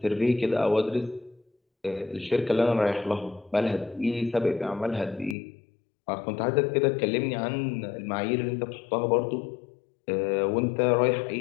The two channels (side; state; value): right; drops out; at 5.4 s